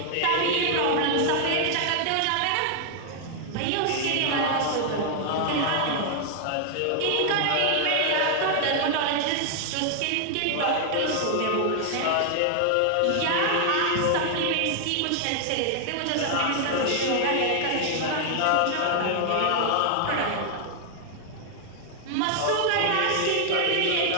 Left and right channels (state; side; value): different; both; correlation 0.00